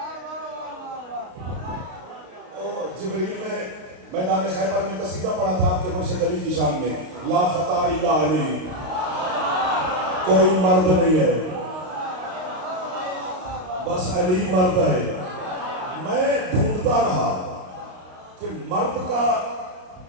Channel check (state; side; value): late; left; 32 ms